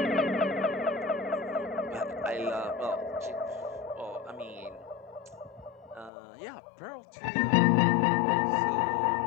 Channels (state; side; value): drops out; right; at 6.1 s